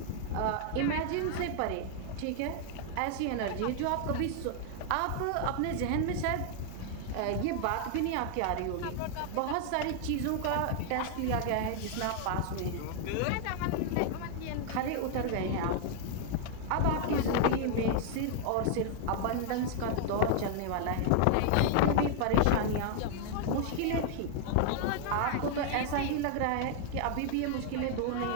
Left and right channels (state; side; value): different; both; correlation 0.00